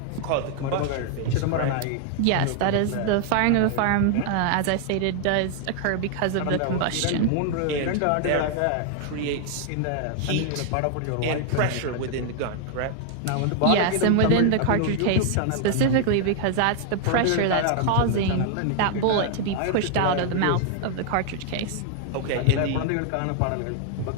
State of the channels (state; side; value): different; both; correlation 0.00